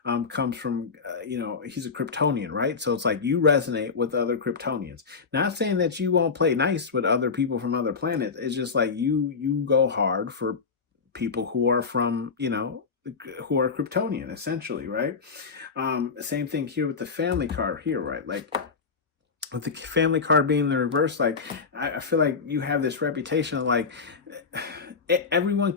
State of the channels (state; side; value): quieter; right; 5.1 dB